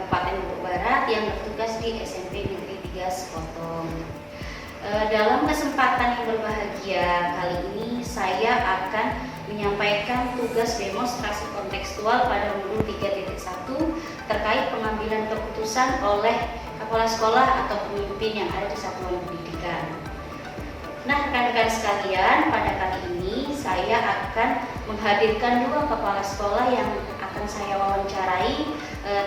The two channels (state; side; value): identical; both; correlation 1.00